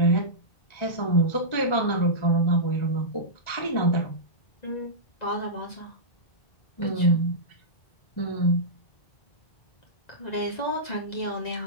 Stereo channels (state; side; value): late; right; 1.9 ms